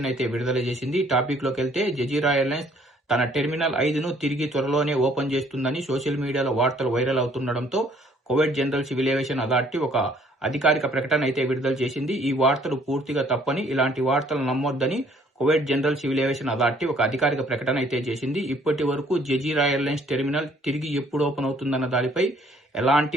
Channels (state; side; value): normal; both; correlation 0.61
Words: అయితే విడుదల చేసింది. టాపిక్ లోకి వెళ్తే జజీరా ఎయిర్లైన్స్ తన టెర్మినల్ 5ను తిరిగి త్వరలోనే ఓపెన్ చేస్తుందని సోషల్ మీడియాలో వార్తలు వైరల్ అవుతుండడంతో Kuwait general civil aviation authority ఒక అధికారిక ప్రకటన అయితే విడుదల చేసింది. ఈ వార్తలు పూర్తిగా తప్పని, ఇలాంటి వార్తలు నమ్మొద్దని Kuwait general civil aviation authority ఒక అధికారిక ప్రకటన అయితే చేసింది. ఇప్పటి వరకు జజీరా ఎయిర్లైన్స్ టెర్మినల్ తిరిగి ఎప్పుడు ఓపెన్ అవుతుందన్న దానిపై